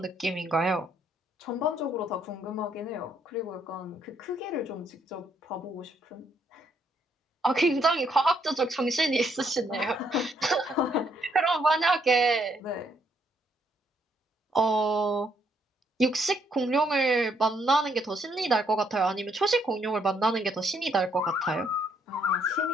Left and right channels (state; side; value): normal; both; correlation 0.71